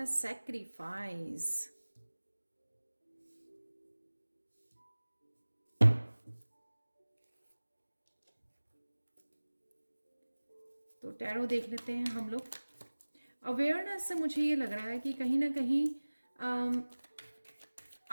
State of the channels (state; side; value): inverted; both; correlation -1.00